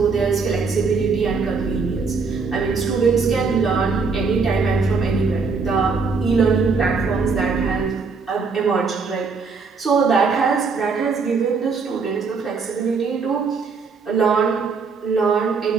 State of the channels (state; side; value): quieter; left; 4.8 dB